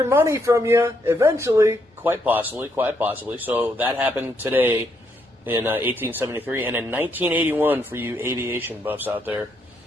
money from you eventually. Quite possibly. So that happened today in 1873, and in 1981, for you aviation buffs out there,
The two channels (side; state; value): both; normal; correlation 0.76